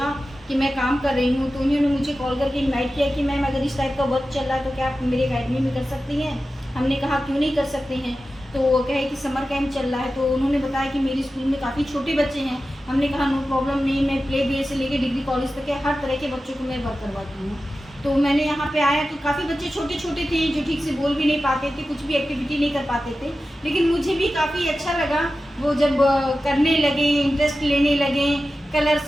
कि मैं काम कर रही हूँ, तो उन्होंने मुझे कॉल करके इनवाइट किया कि मैम अगर इस टाइप का वर्क चल रहा है तो क्या आप मेरे अकेडमी में कर सकती हैं। हमने कहा क्यों नहीं कर सकते हैं। तो वो कहे कि समर कैंप चल रहा है, तो उन्होंने बताया कि मेरे स्कूल में काफ़ी छोटे बच्चे हैं। हमने कहा नो प्रॉब्लम नहीं, मैं प्ले बी से लेकर डिग्री कॉलेज तक के हर तरह के बच्चों को मैं वर्क करवाती हूँ। तो मैंने यहाँ पे आया तो काफ़ी बच्चे छोटे छोटे थे जो ठीक से बोल भी नहीं पाते थे, कुछ भी एक्टिविटी नहीं कर पाते थे, लेकिन मुझे भी काफ़ी अच्छा लगा वो जब करने लगे, इंटरेस्ट लेने लगे,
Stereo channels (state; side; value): normal; both; correlation 0.93